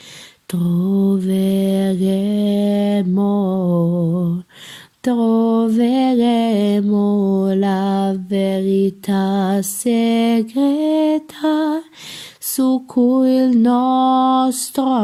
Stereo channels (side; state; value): both; identical; correlation 1.00